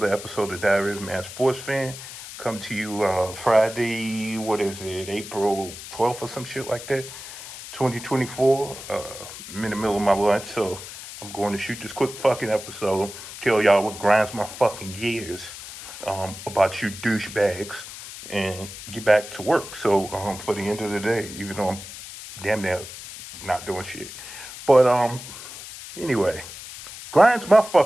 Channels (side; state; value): left; noise; hiss, 12 dB below the sound